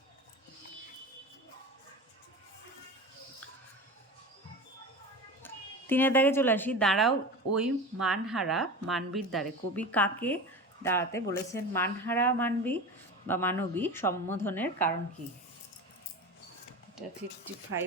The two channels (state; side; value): normal; both; correlation 0.29